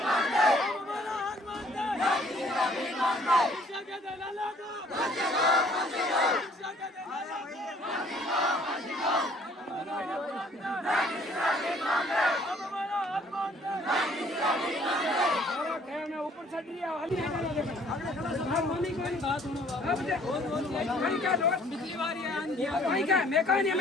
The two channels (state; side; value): normal; both; correlation 0.59